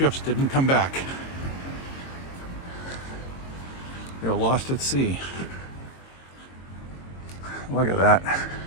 didn't come back. They were lost at sea. Look at that.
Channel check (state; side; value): late; right; 22 ms